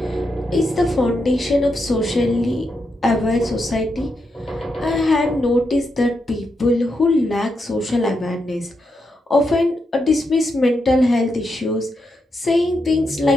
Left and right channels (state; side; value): normal; both; correlation 0.83